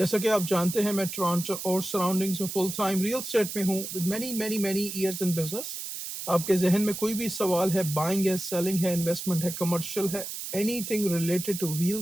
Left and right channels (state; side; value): noise; right; hiss, 7 dB below the sound